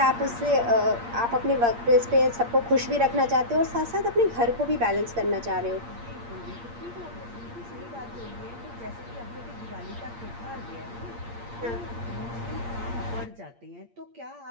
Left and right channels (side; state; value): left; late; 8.6 ms